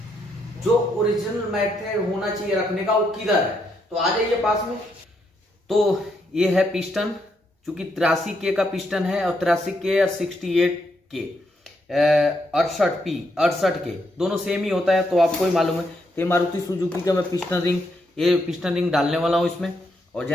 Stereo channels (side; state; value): both; normal; correlation 0.78